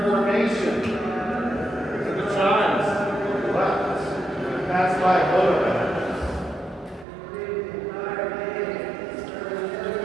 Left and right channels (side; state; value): left; drops out; at 7.1 s